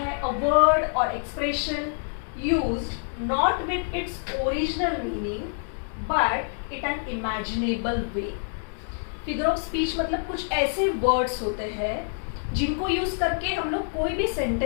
अ वर्ड और expression used not with its original meaning but it an imaginable way. Figure of speech मतलब कुछ ऐसे वर्ड्स होते हैं जिनको यूज करके हम लोग कोई भी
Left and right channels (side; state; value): right; silent; 61 dB below the other